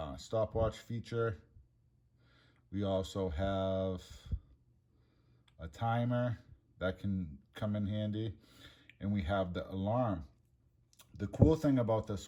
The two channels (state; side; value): identical; both; correlation 1.00